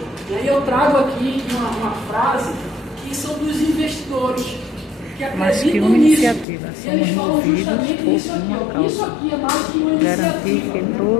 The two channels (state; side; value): drops out; right; at 6.5 s